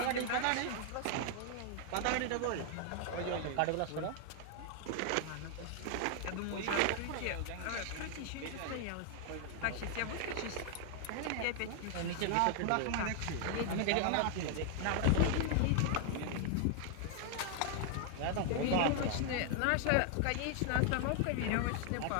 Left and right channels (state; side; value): different; both; correlation 0.00